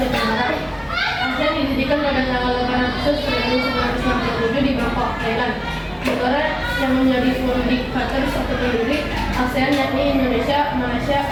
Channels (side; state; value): both; identical; correlation 1.00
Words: Tenggara. ASEAN didirikan pada tanggal 8 Agustus 1967 di Bangkok, Thailand. Negara yang menjadi founding fathers atau pendiri ASEAN yakni Indonesia, Malaysia,